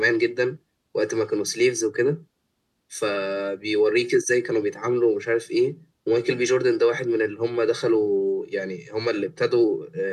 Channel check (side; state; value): both; identical; correlation 1.00